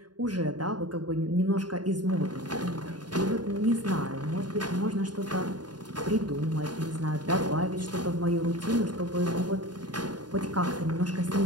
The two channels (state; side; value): late; left; 0.70 ms